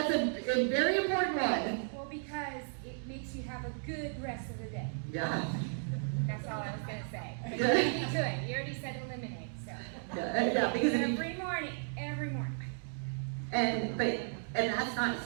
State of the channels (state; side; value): silent; left; digital silence